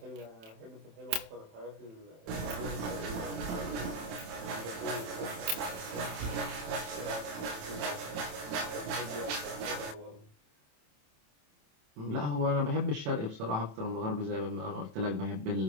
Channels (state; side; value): late; left; 27 ms